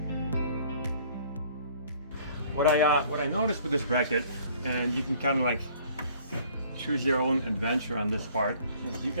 What I noticed with this bracket, and you can kind of like choose your own adventure on this part, is you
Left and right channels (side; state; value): both; inverted; correlation -0.56